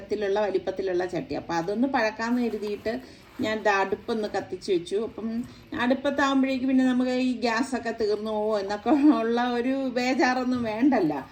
വലിപ്പത്തിലുള്ള ചട്ടി. അപ്പം അതൊന്ന് പഴക്കാമെന്ന് കരുതിയിട്ട് ഞാൻ അടുപ്പൊന്ന് കത്തിച്ച് വെച്ചു. അപ്പം അടുപ്പത്താകുമ്പോഴേക്ക് പിന്നെ നമുക്ക് ഈ ഗ്യാസൊക്കെ തീർന്നു പോകുമോ എന്നൊക്കെ ഉള്ള ഒരു ബേജാറൊന്നും വേണ്ടല്ല.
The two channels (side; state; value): both; identical; correlation 1.00